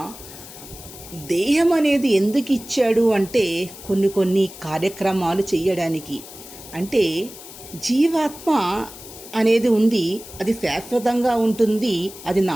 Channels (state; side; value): noise; left; hiss, 16 dB below the sound